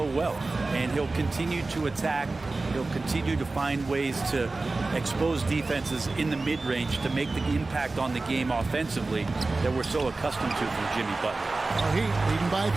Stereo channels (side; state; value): left; quieter; 3.4 dB